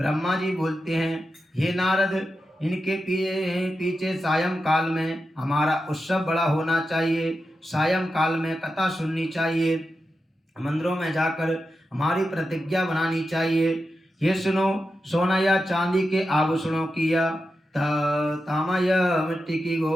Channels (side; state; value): both; normal; correlation 0.90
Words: जी बोलते हैं, हे नारद, इनके पीछे सायं काल में हमारा उत्सव बड़ा होना चाहिए। सायं काल में कथा सुननी चाहिए, मंदिरों में जाकर हमारी प्रतिज्ञा बनानी चाहिए। ये सुनो, सोना या चांदी के आभूषणों की या तामा या मिट्टी की